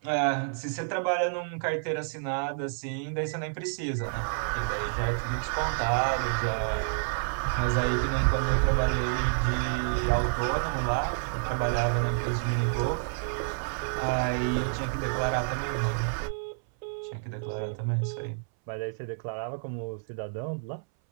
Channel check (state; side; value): silent; left; 58 dB below the other